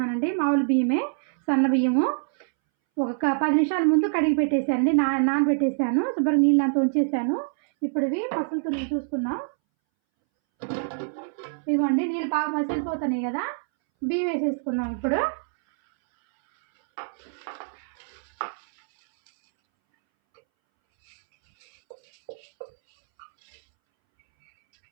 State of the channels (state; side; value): silent; left; 62 dB below the other